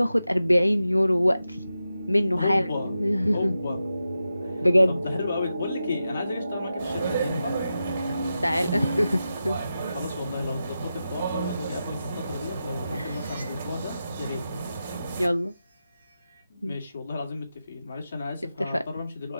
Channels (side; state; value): both; inverted; correlation -0.90